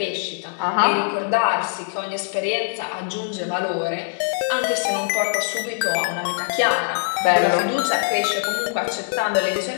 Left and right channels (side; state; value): right; silent; 64 dB below the other